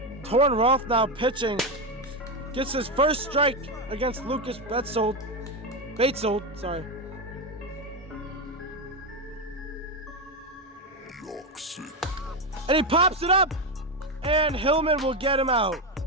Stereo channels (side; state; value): both; normal; correlation 0.11